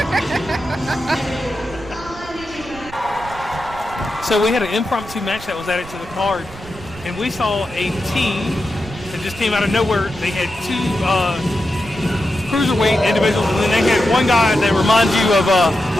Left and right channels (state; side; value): noise; right; rumble, 16 dB below the sound